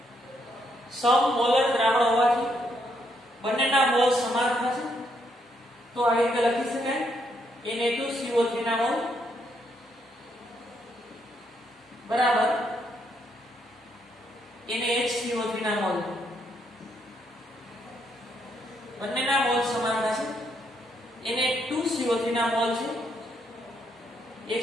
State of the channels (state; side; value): normal; both; correlation 0.75